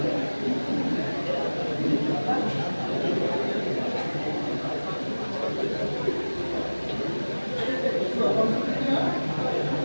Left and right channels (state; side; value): inverted; both; correlation -1.00